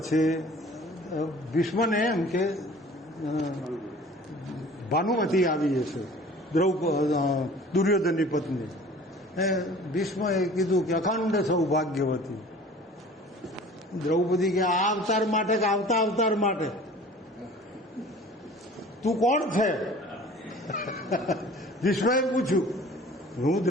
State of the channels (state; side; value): normal; both; correlation 0.46